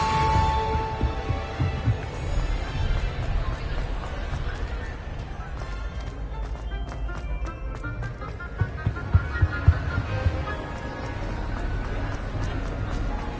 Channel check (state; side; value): identical; both; correlation 1.00